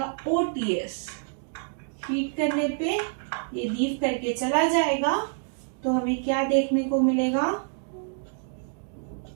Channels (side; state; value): left; silent; digital silence